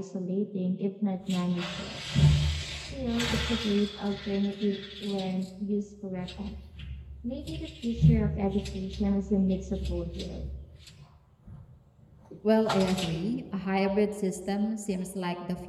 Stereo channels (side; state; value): both; identical; correlation 1.00